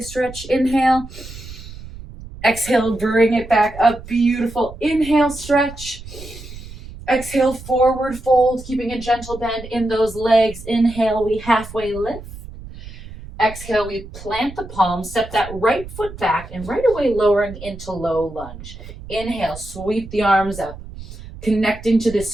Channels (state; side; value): noise; right; rumble, 14 dB below the sound